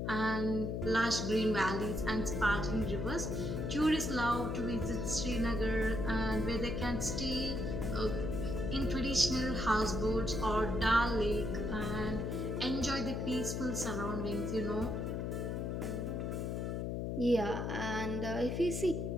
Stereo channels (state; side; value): noise; left; hum, 2 dB below the sound